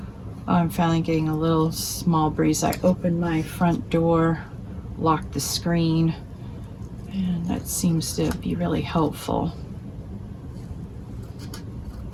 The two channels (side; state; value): both; identical; correlation 1.00